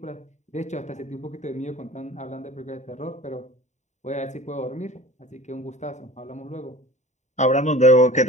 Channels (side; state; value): right; late; 0.34 ms